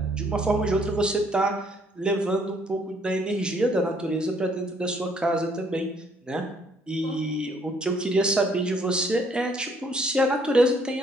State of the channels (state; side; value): normal; both; correlation 0.65